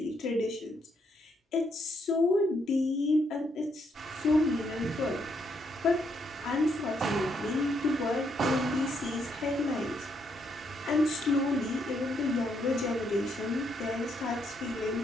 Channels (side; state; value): both; normal; correlation 0.75